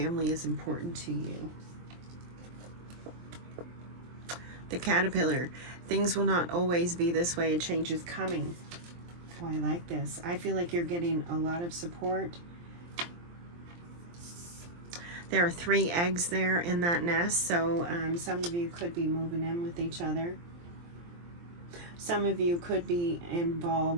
is important to you. The caterpillar. Things will not always be this way. A change is coming. Oh, I like this. I feel like you're getting a lot of support. There are 3 eggs there in that nest, so some of you could be moving in with each other. Some of you could be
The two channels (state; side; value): late; left; 23 ms